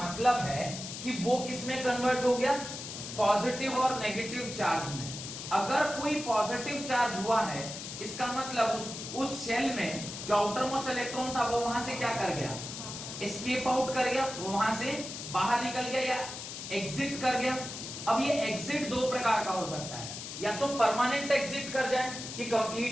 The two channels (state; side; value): noise; left; hiss, 8 dB below the sound